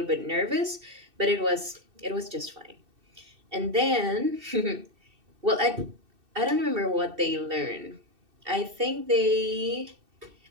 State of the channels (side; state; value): left; late; 2.6 ms